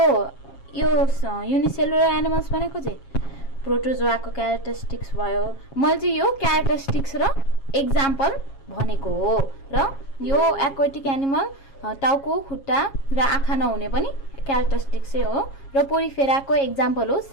युनिसेलुलर एनिमल्स भनेको चाहिँ प्रोटोजोआको क्यारेक्टरिस्टिक्स भयो मैले चाहिँ यो क्यारेक्टरिस्टिक्स र एक्जाम्पल भनेको हो र यो एक्वाटिक एनिमल टाउको खुट्टा र आँखा नहुने पनि क्यारेक्टरिस्टिक्सै हो र पोरिफेराको एक्जाम्पल हो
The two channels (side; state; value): right; late; 7.3 ms